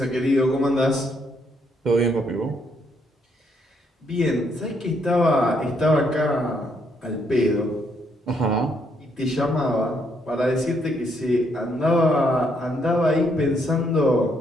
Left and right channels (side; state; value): both; normal; correlation 0.73